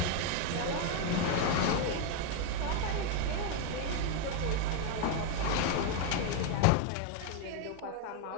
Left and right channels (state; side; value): different; both; correlation 0.01